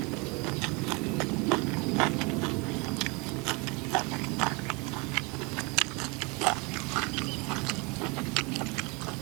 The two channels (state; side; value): quieter; left; 29.0 dB